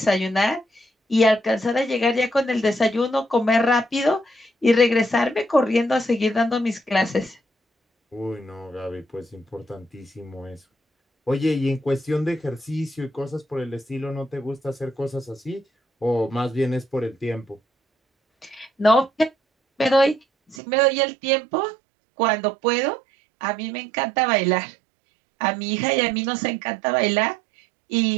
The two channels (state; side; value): drops out; left; at 20.6 s